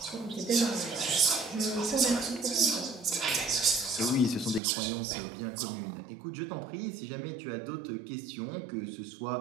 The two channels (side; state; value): left; drops out; at 4.6 s